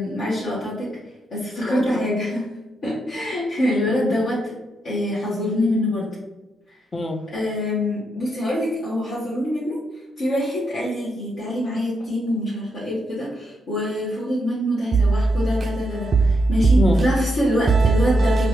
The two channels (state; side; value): normal; both; correlation 0.81